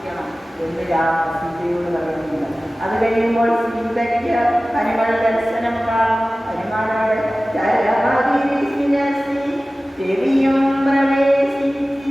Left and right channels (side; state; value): both; normal; correlation 0.97